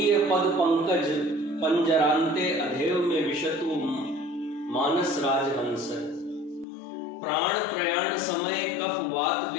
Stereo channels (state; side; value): drops out; right; at 6.7 s